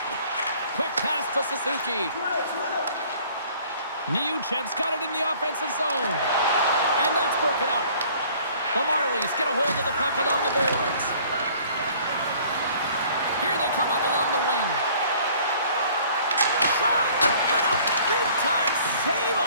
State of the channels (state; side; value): inverted; both; correlation -0.54